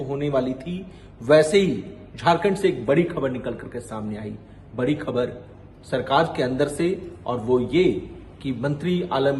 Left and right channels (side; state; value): both; identical; correlation 1.00